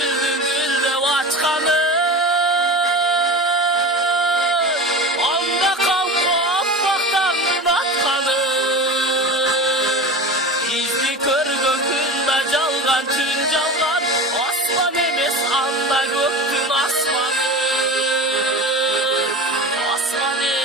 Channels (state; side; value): normal; both; correlation 0.31